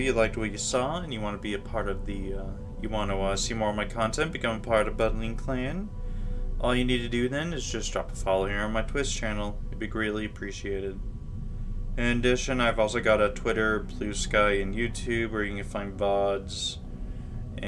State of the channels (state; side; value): identical; both; correlation 1.00